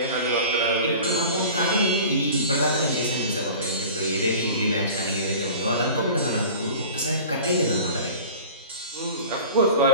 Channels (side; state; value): both; inverted; correlation -0.40